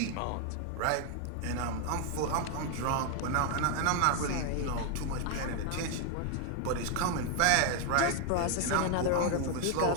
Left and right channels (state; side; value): different; both; correlation 0.00